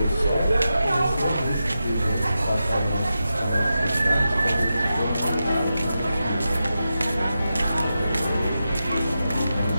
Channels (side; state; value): both; inverted; correlation -0.90